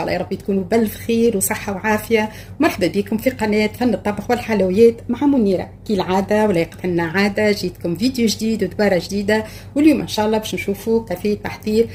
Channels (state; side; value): identical; both; correlation 1.00